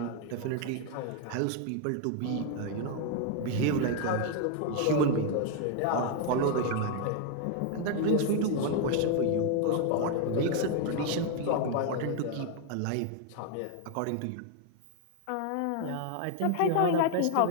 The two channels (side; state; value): both; different; correlation 0.00